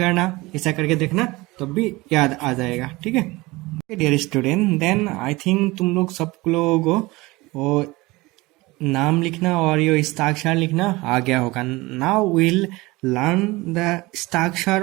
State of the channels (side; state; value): left; quieter; 21.8 dB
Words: ऐसा करके देखना, तब भी याद आ जाएगा, ठीक है। Dear student, then I think तुम लोग सब लोग वो नाम लिखना और ये हस्ताक्षर लिखना आ गया होगा। नाउ विल लर्न द हस्ताक्षर